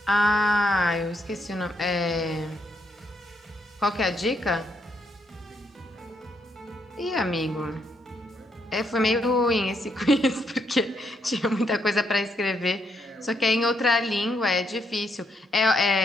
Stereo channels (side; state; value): both; normal; correlation 0.76